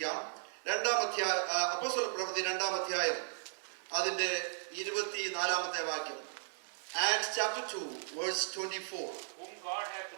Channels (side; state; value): left; silent; digital silence